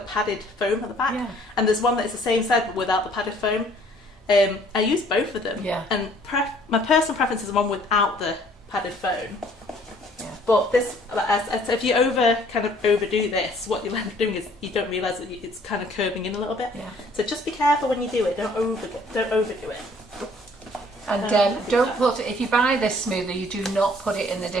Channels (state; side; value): normal; both; correlation 0.58